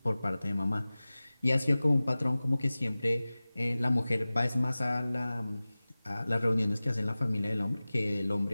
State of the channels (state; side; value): inverted; both; correlation -0.98